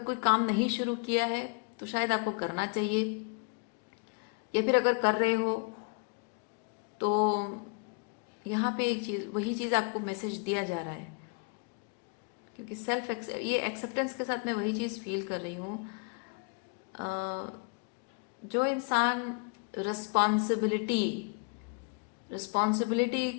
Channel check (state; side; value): quieter; right; 35.9 dB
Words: काम नहीं शुरू किया है तो शायद आपको करना चाहिए, या फिर अगर कर रहे हो तो यहाँ पे एक चीज़, वही चीज़ आपको मैसेज दिया जा रहा है, क्योंकि ये एक्सेप्टेंस के साथ मैं वही चीज़ फील कर रही हूँ। जो इंसान रिस्पॉन्सिबिलिटी